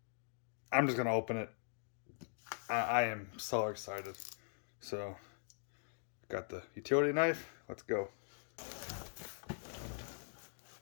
I'm just going to open it. I am so excited. So, got the utility knife. Let's go.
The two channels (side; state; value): right; silent; digital silence